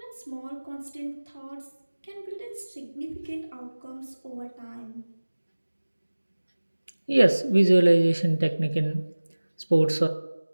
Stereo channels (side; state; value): both; inverted; correlation -1.00